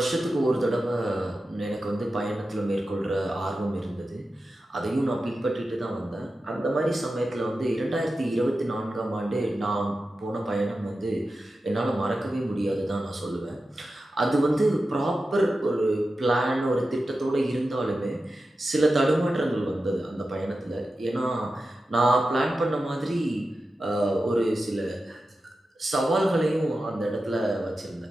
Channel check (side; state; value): both; normal; correlation 0.92